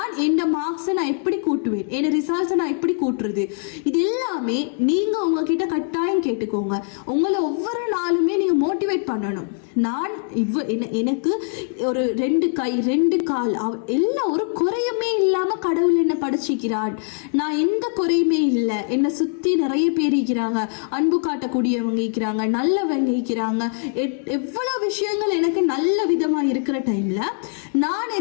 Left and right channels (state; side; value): silent; right; 55 dB below the other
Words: என் மார்க்ஸை நான் எப்படி கூட்டுவேன், என் ரிசல்ட்ஸை நான் எப்படி கூட்டுறது, இது எல்லாமே நீங்கள் உங்ககிட்ட கட்டாயம் கேட்டுக்கோங்க. உங்களை ஒவ்வொரு நாளுமே நீங்கள் மோட்டிவேட் பண்ணணும். நான் எனக்கு ஒரு 2 கை 2 கால் எல்லாம் ஒரு குறையுமே இல்லாமல் கடவுள் என்னை படிச்சிக்கிறான், நான் எந்த குறையுமே இல்லை, என்னை சுற்றி நிறைய பேர் இருக்கிறாங்க, அன்பு காட்டக்கூடியவங்க இருக்கிறாங்க, நல்லவங்க இருக்கிறாங்க, எவ்வளவு விஷயங்கள் எனக்கு நல்ல விதமா இருக்கிற டைம்ல நான்